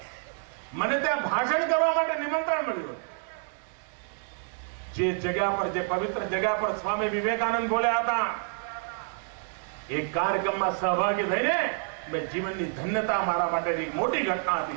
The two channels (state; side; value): silent; left; 59 dB below the other